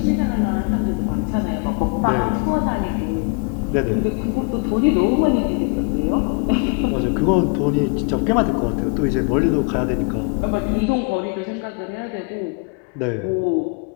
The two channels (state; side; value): quieter; right; 34.9 dB